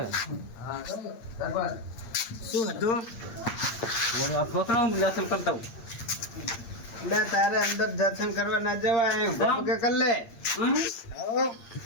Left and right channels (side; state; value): right; late; 8.7 ms